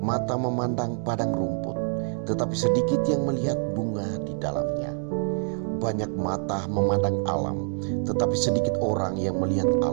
memandang padang rumput, tetapi sedikit yang melihat bunga di dalamnya. Banyak mata memandang alam, tetapi sedikit orang yang melihat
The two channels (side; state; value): left; silent; 57 dB below the other